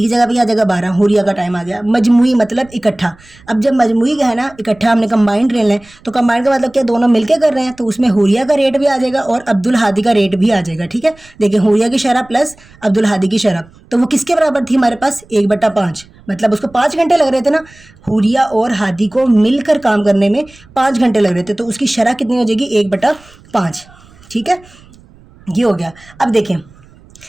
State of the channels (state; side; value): noise; right; rumble, 26 dB below the sound